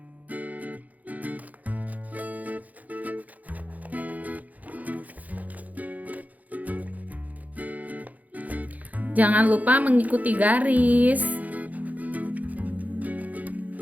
Jangan lupa mengikuti garis.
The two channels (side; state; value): left; late; 0.078 ms